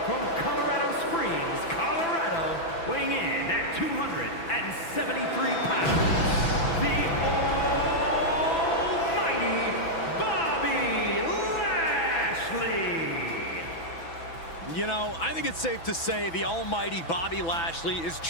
from Colorado Springs, Colorado, weighing in at 273 pounds, the almighty Bobby Lashley. You know, I think it's safe to say the almighty Bobby Lashley is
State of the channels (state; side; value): late; right; 6.0 ms